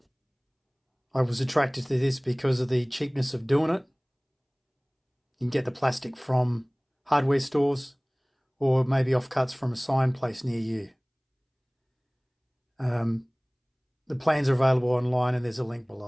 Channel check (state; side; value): identical; both; correlation 1.00